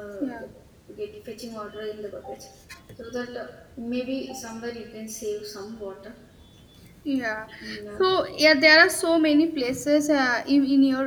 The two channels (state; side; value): identical; both; correlation 1.00